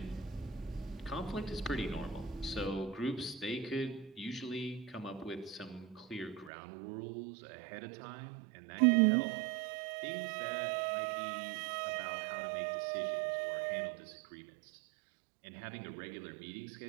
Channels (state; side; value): drops out; left; at 6.5 s